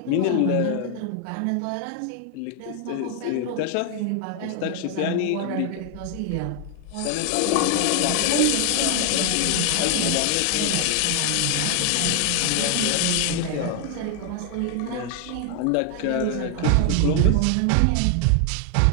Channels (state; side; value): different; both; correlation 0.00